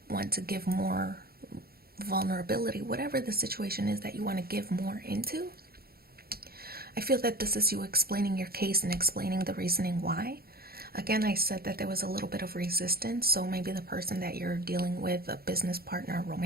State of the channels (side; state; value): left; late; 0.44 ms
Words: want to give more vulnerability, whatever the situation is that you want to give more into. I feel that this is you explaining your case and explaining the reasoning why. Again, I said that there was a little bit of resistance, so maybe the person that you're dealing with, a business partner, a